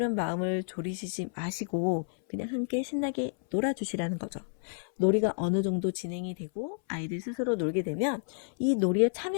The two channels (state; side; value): silent; right; 58 dB below the other